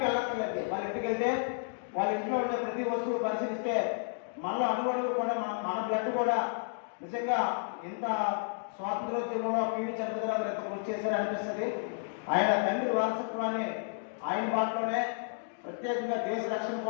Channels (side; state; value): right; silent; digital silence